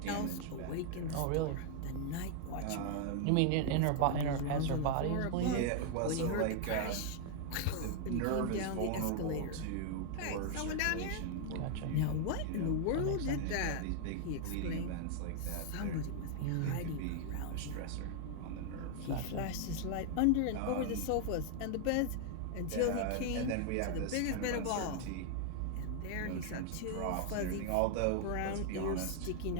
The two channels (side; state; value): both; different; correlation 0.00